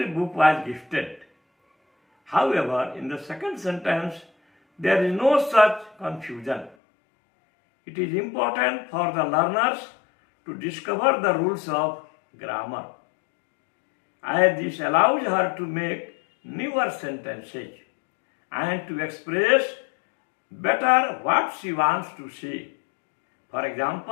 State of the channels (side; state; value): right; drops out; at 6.8 s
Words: book was gifted. However, in the second sentence, there is no such confusion. It is important for the learners to discover the rules of grammar, as this allows her to make newer sentences and to express better what she wants to say. For